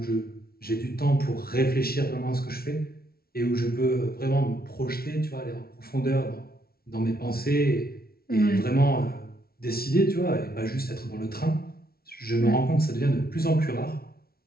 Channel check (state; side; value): late; right; 0.44 ms